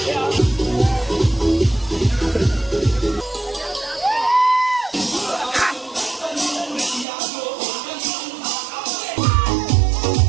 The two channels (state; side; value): drops out; left; at 7.1 s